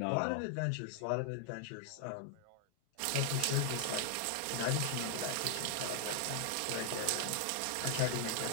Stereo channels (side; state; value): both; different; correlation 0.00